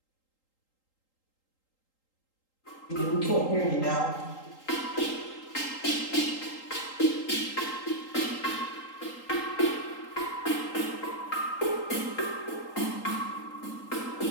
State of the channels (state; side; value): late; right; 3.8 ms